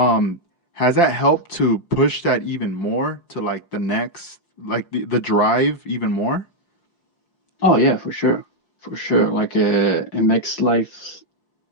has that helped to push that even more to, like, the next, like, the drive even more? oh yeah, for sure, for sure. Like it makes life,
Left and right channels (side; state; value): right; late; 5.7 ms